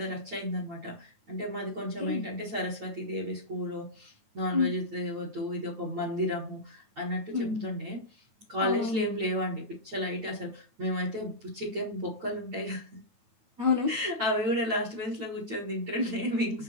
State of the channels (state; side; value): late; left; 9.2 ms